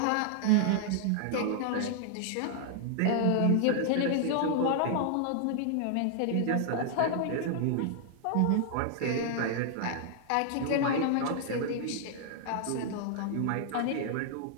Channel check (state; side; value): different; both; correlation -0.01